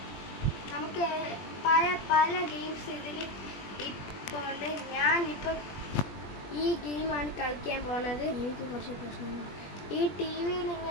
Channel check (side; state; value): right; late; 20 ms